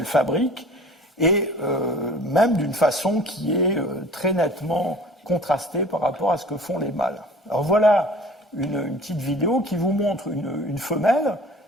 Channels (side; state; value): both; normal; correlation 0.46